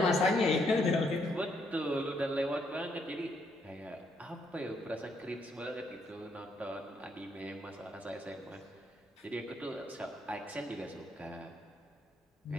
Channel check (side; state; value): both; normal; correlation 0.73